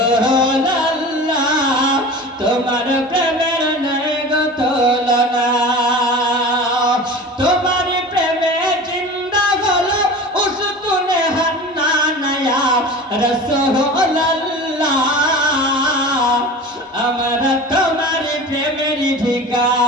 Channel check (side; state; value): both; normal; correlation 0.35